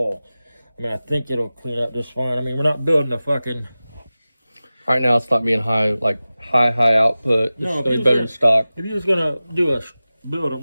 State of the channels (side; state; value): both; inverted; correlation -0.97